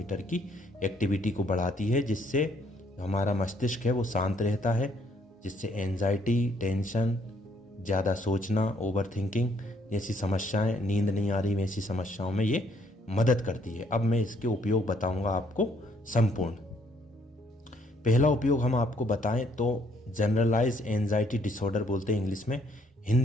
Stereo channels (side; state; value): both; normal; correlation 0.67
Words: की एक्टिविटी को बढ़ाती है, जिससे हमारा मस्तिष्क है वो शांत रहता है, जिससे एंजाइटी, टेंशन, ज़्यादा सोचना, ओवर थिंकिंग जैसी समस्याएं, नींद नहीं आ रही वैसी समस्याओं में ये मदद करती है। अब मैं इसके उपयोग बताऊंगा आपको संपूर्ण। पहला उपयोग हम आपको बताएं तो जनरलाइज एंजाइटी डिसऑर्डर बोलते हैं इंग्लिश में।